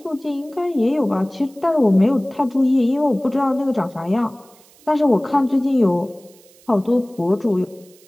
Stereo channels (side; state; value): right; noise; hiss, 28 dB below the sound